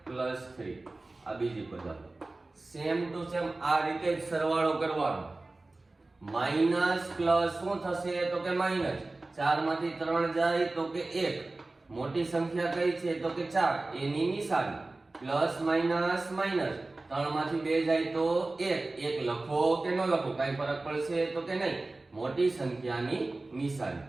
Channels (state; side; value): quieter; left; 3.1 dB